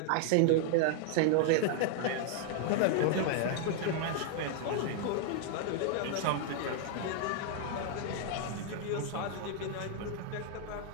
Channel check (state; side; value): different; both; correlation 0.00